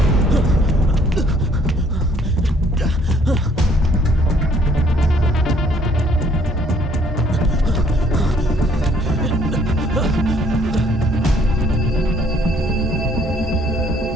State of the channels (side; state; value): both; normal; correlation 0.62